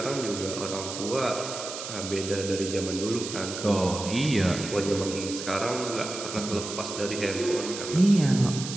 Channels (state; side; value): noise; right; hiss, 8 dB below the sound